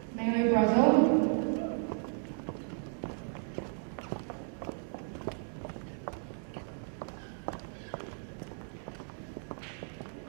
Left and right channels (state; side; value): silent; left; 55 dB below the other